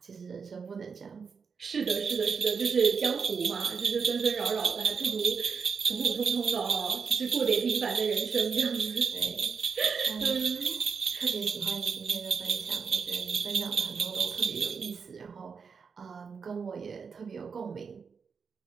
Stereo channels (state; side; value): quieter; left; 5.7 dB